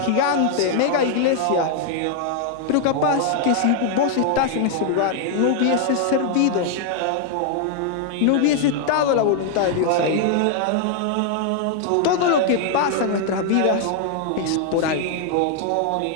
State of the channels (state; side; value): different; both; correlation 0.00